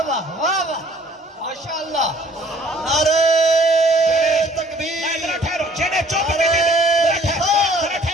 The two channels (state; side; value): normal; both; correlation 0.57